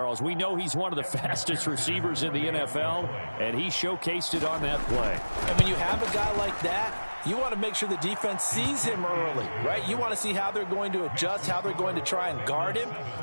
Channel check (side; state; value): both; inverted; correlation -1.00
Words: We know he's one of the fastest receivers in the NFL, and he showcased it on that play. And when you have a guy like that, you want to make sure the defense sees him early, right? You want to see how they're going to adjust, how they're going to try and guard him,